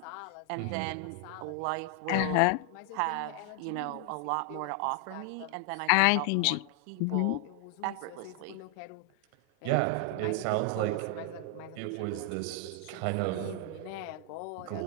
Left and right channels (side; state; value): both; different; correlation 0.00